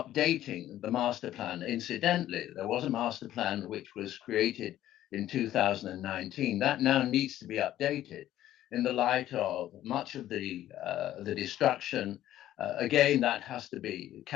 the master plan. Incidentally, there was a master plan which was created in 2019. That now needs to be updated in the light of much of the destruction. Again, that has to be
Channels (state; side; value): quieter; right; 13.0 dB